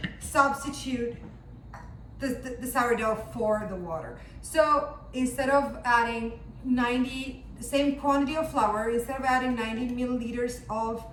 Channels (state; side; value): identical; both; correlation 1.00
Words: substitute the sourdough for the water. So instead of adding 90, the same quantity of flour, instead of adding 90 milliliters of